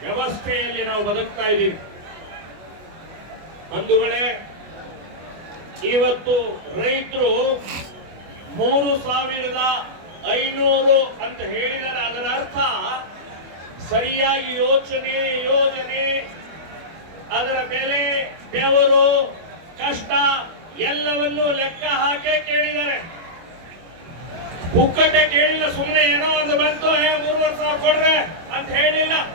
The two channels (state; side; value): late; left; 25 ms